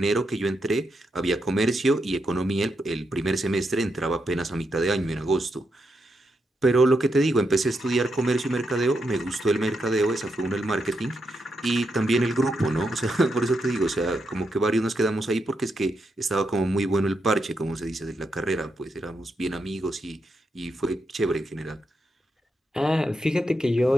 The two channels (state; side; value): normal; both; correlation 0.83